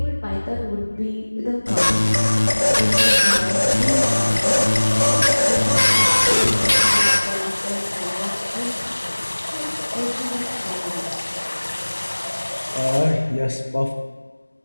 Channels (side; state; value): both; inverted; correlation -1.00